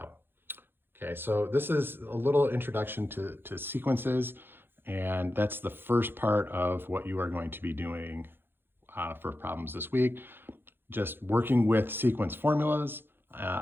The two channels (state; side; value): late; left; 0.10 ms